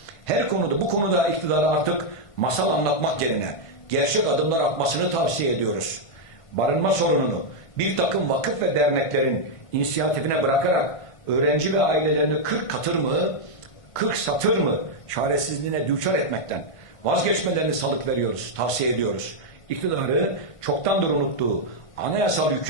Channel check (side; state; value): right; late; 1.5 ms